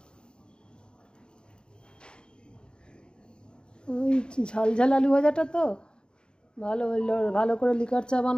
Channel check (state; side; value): late; right; 0.050 ms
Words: ওই ঝাল ঝাল আলু ভাজাটা তো ভালো হইলো, ভালো করে লিকার চা